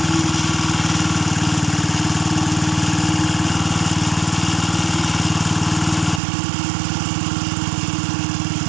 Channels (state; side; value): drops out; left; at 6.2 s